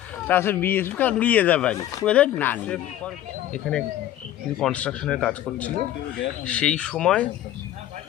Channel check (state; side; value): quieter; right; 12.5 dB